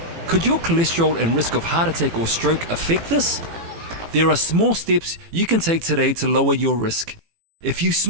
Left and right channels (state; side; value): late; left; 18 ms